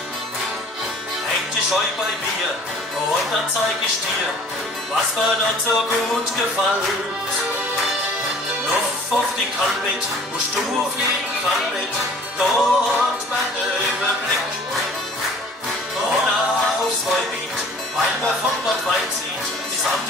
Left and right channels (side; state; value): both; normal; correlation 0.49